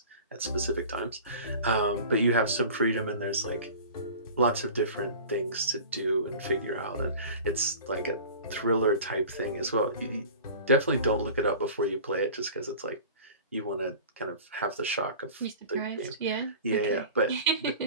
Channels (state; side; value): inverted; both; correlation -0.39